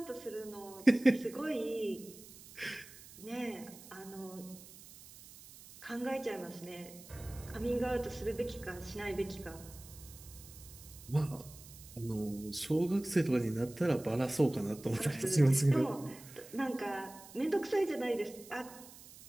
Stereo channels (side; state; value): right; noise; hiss, 18 dB below the sound